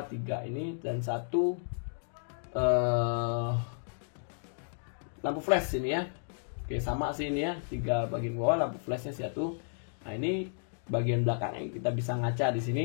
ini dan satu lampu flash ini ya. Oke, sama sih ini ya, 3 bagian bawah lampu flashnya satu. Nah, ini bagian belakangnya kita bisa ngaca di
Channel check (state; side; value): silent; right; digital silence